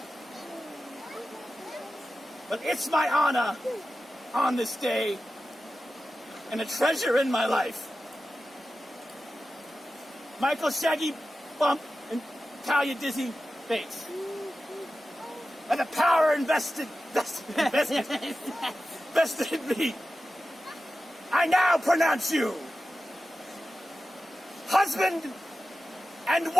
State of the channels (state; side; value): normal; both; correlation 0.94